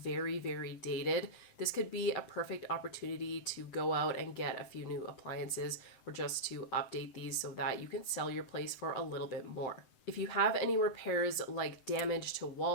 very dated, this could be a perfect opportunity to go out and get a few new appliances or just to update these so that you can sell your place for a little bit more. If you have any repairs like damage to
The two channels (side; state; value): right; late; 7.9 ms